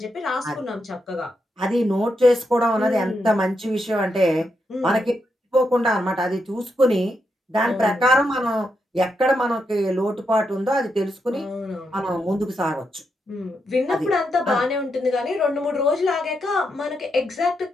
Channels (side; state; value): both; normal; correlation 0.82